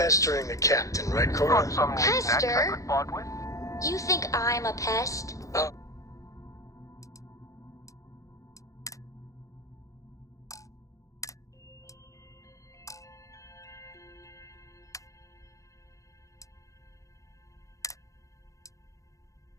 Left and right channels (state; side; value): late; right; 0.16 ms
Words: the captain, right, Cora? Got some knickknacks I Pester? could part with? You think I'm a pest?